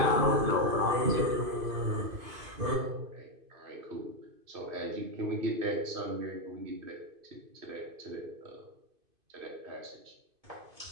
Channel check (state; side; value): late; left; 2.5 ms